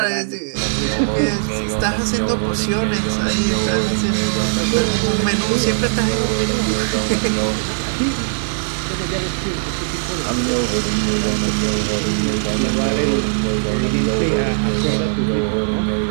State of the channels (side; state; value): left; silent; digital silence